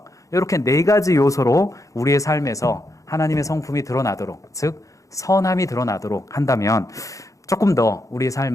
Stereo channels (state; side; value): late; right; 0.16 ms